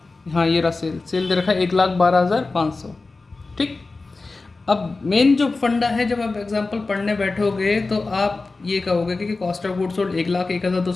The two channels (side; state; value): right; quieter; 3.6 dB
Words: हाँ ये रहा सेल दे रखा है 1,12,500। ठीक, अब मेन जो फंडा है, जब आप एग्जांपल पढ़ने बैठोगे तो आप ये कहोगे कि कॉस्ट ऑफ गुड्स सोल्ड